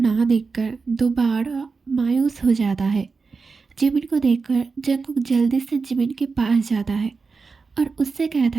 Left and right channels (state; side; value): quieter; left; 4.6 dB